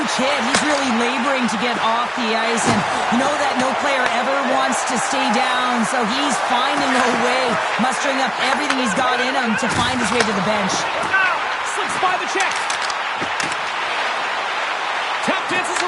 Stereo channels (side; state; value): both; identical; correlation 1.00